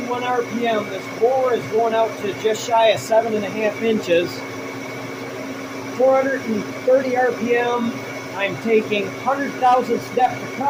RPM. This bore is going out to just shy of 7.5 inches. 430 RPM. I'm taking 100 thousandths depth to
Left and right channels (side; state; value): both; identical; correlation 1.00